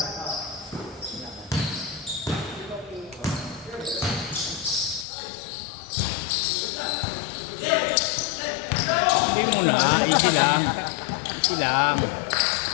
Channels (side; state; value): right; drops out; at 5.1 s